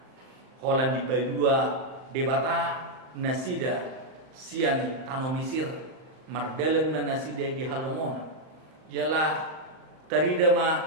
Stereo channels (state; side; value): late; left; 38 ms